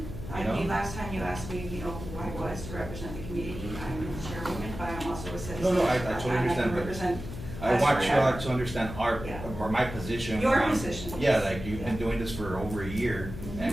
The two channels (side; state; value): left; noise; hum, 9 dB below the sound